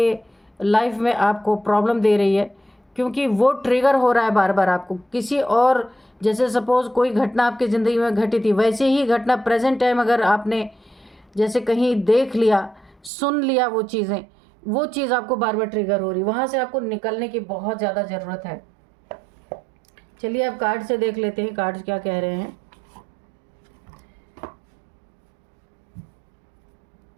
लाइफ में आपको प्रॉब्लम दे रही है, क्योंकि वो ट्रिगर हो रहा है बार बार आपको किसी और। जैसे सपोज़ कोई घटना आपकी ज़िंदगी में घटी थी, वैसे ही घटना प्रेजेंट टाइम अगर आपने जैसे कहीं देख लिया, सुन लिया वो चीज़ें, वो चीज़ आपको बार बार ट्रिगर हो रही, वहाँ से आपको निकलने की बहुत ज़्यादा ज़रूरत है। चलिए अब कार्ड से देख लेते हैं कार्ड्स क्या कह रहे हैं।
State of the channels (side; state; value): left; drops out; at 13.1 s